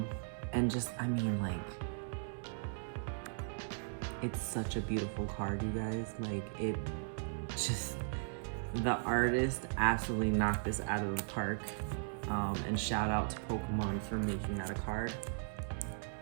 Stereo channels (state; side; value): silent; left; digital silence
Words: just, I mean, like, it's such a beautiful card, you guys. Like, it just, the artist absolutely knocked this out of the park. And shout out to Pokemon for making that a card.